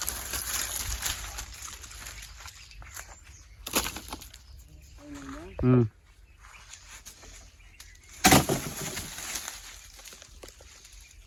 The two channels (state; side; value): identical; both; correlation 1.00